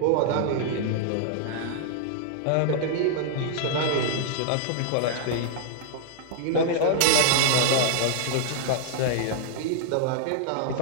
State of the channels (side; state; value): both; different; correlation -0.01